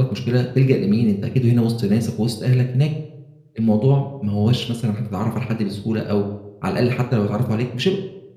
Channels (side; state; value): both; identical; correlation 1.00